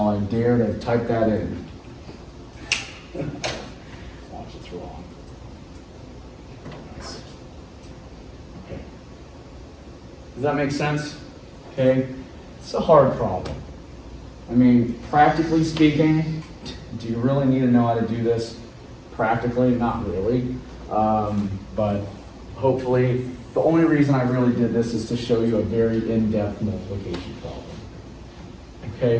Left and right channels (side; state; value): both; identical; correlation 1.00